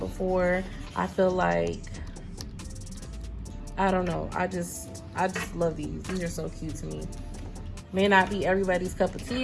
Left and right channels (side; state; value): both; identical; correlation 1.00